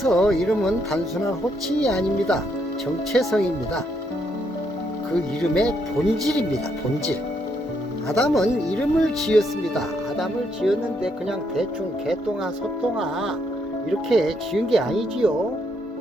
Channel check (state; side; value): normal; both; correlation 0.75